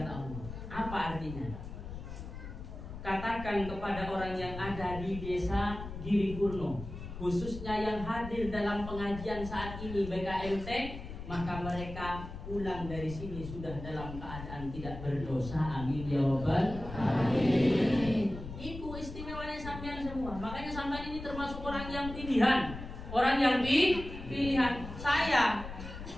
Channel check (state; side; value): noise; left; rumble, 10 dB below the sound